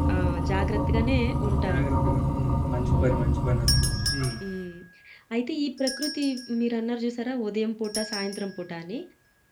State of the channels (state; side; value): identical; both; correlation 1.00